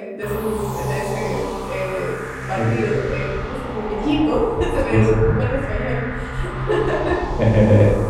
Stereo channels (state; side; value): identical; both; correlation 1.00